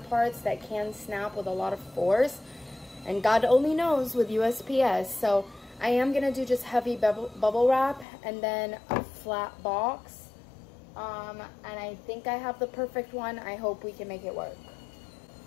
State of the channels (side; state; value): right; drops out; at 8.1 s